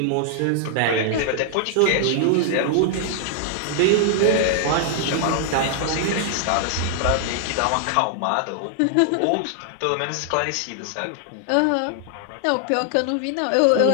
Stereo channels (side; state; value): both; different; correlation 0.00